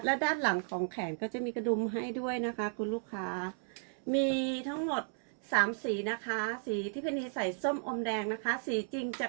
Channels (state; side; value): silent; left; digital silence